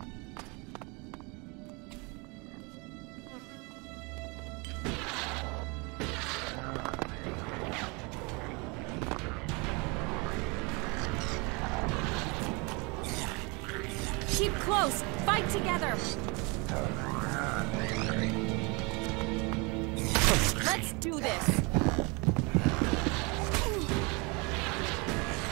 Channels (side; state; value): left; quieter; 29.4 dB